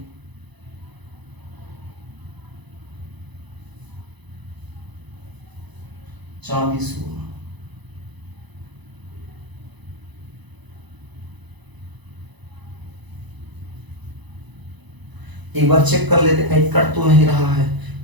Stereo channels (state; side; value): late; left; 1.0 ms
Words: चांदी, सोना। एक बार चेक कर लेते कहीं कट तो नहीं रहा है।